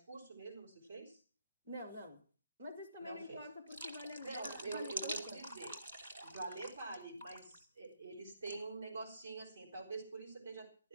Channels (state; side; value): inverted; both; correlation -0.74